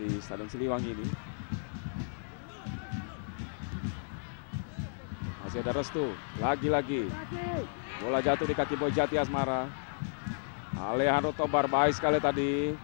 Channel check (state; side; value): silent; right; digital silence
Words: Stadion Siliwangi ini. Masih ada Restu, lagi-lagi bola jatuh di kaki Boy Jati Asmara. Alejandro Tobar baik sekali tadi